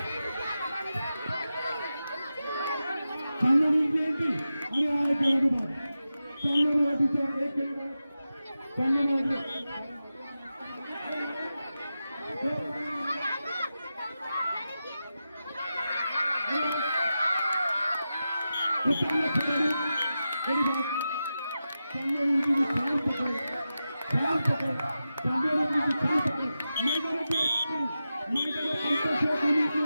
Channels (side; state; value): both; inverted; correlation -0.91